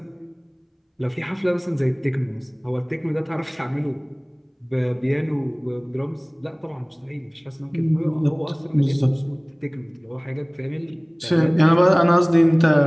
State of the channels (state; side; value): identical; both; correlation 1.00